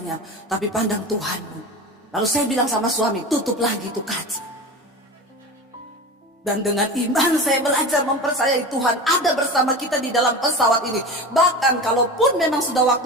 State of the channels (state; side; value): normal; both; correlation 0.30